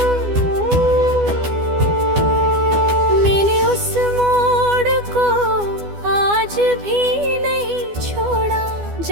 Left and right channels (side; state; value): left; late; 12 ms